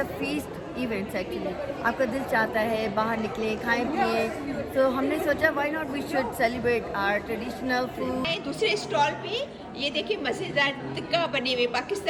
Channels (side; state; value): both; identical; correlation 1.00